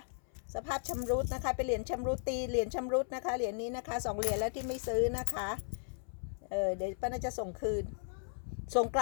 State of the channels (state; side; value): silent; right; 54 dB below the other